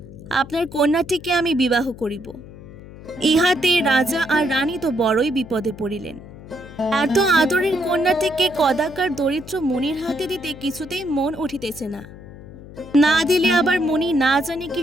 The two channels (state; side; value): noise; left; hum, 17 dB below the sound